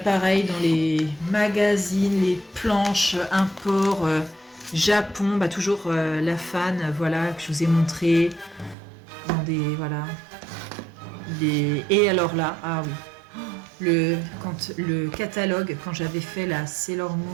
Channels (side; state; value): left; drops out; at 8.8 s